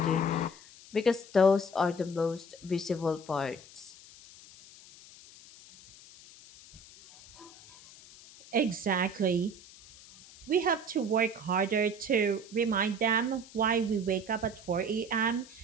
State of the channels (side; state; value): left; noise; hiss, 20 dB below the sound